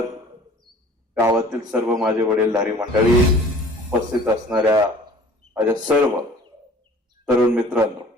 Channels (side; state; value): both; normal; correlation 0.49